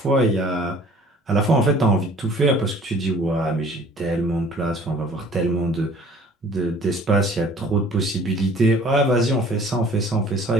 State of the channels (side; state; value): both; normal; correlation 0.52